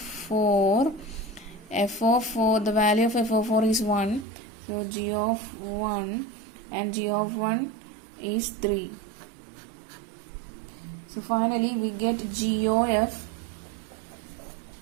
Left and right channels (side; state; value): left; drops out; at 4.2 s